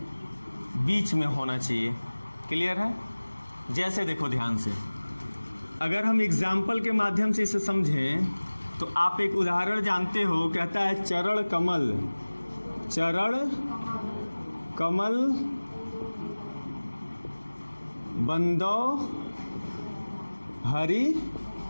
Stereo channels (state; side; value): inverted; both; correlation -1.00